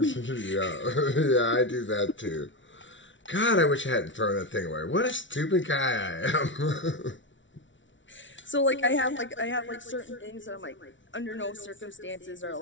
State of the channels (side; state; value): right; late; 0.55 ms